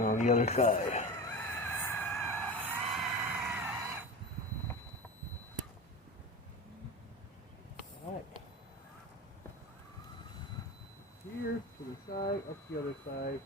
on the other side. Alright. Here to the side, up the other side.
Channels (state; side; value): normal; both; correlation 0.28